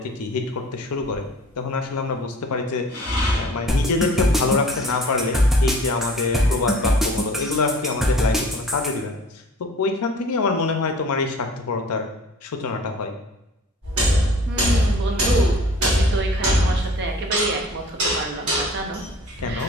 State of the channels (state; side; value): normal; both; correlation 0.47